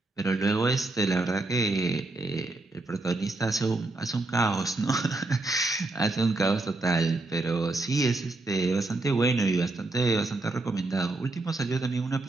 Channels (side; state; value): left; quieter; 3.0 dB